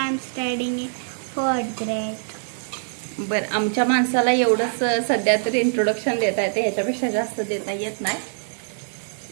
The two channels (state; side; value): silent; left; digital silence